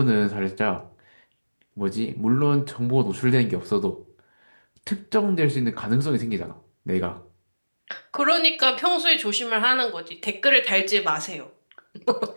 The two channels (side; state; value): both; inverted; correlation -1.00